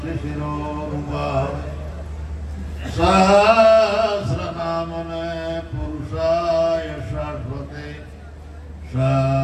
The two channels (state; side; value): identical; both; correlation 1.00